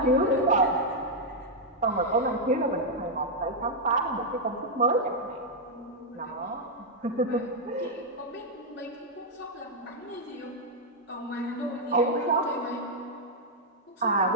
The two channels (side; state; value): both; normal; correlation -0.03